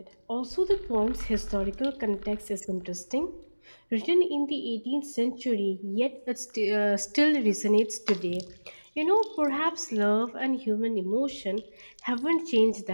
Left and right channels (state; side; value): inverted; both; correlation -1.00